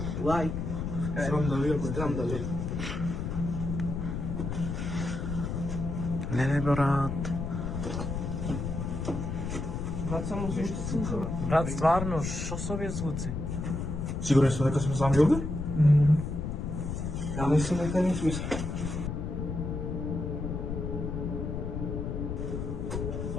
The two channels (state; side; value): noise; left; rumble, 3 dB below the sound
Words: лайк. Срам да видам. Срам да видам. Не, брат. Брат, само звучи слуха. Брат, стварно, шо со овие звуци? Сигурен сте дека сме сами овде? Ја мислам дека не сме.